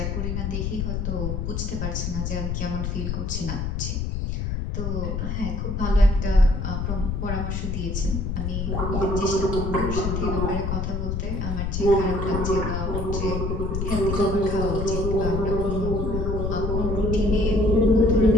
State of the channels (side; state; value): left; noise; rumble, 1 dB below the sound